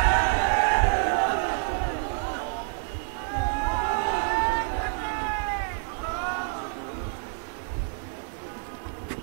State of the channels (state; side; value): silent; left; digital silence